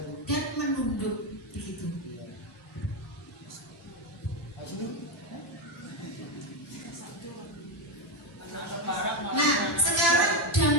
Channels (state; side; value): normal; both; correlation 0.10